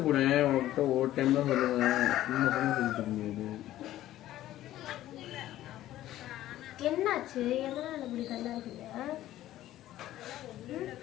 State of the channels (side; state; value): right; quieter; 14.0 dB